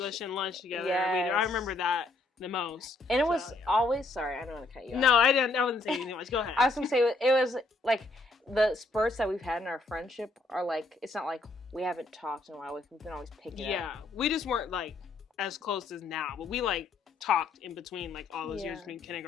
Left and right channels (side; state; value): right; quieter; 3.1 dB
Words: and lunch together. Yes. I remember that the most. And it was always, sorry, I don't want to cut you off. No, I wasn't saying anything much. Go ahead. I was going to say, it was the spurts that we've had in our friendship are it's not we haven't talked in a while. We can always pick it up. Yeah, we just weren't as close as now, but we talked in between all those years between